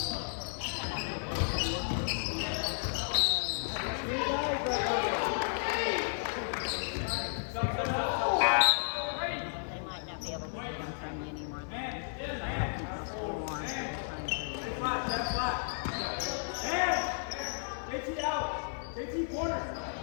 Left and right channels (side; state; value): right; silent; 56 dB below the other